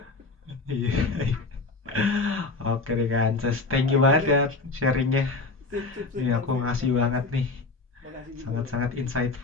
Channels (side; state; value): right; quieter; 3.7 dB